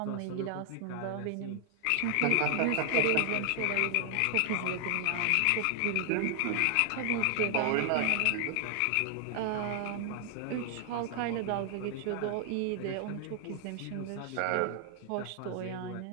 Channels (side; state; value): both; different; correlation 0.00